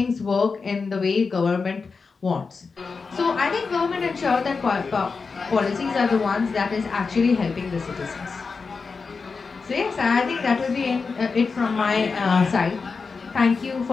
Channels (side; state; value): right; quieter; 4.7 dB